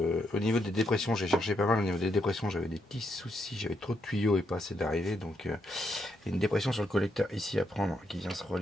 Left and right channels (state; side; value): normal; both; correlation 0.78